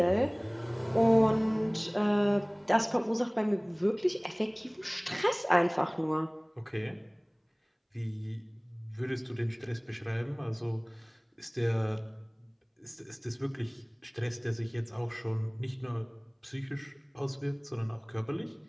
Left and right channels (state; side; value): identical; both; correlation 1.00